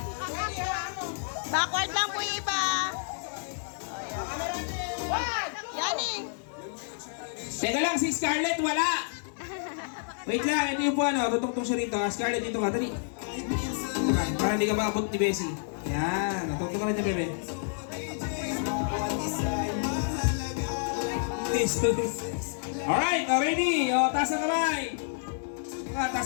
Backward lang po yung iba. Yaning. Teka lang, si Scarlett wala! Wait lang, ito yung po ano, tutungtong siya rito. Scarlett, dito ka, dali. Para hindi ka maabot ni Bessie. Yan, tutungtong ka rin niya, bebe. Alright, ready? O, taas ang kamay.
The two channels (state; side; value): silent; right; digital silence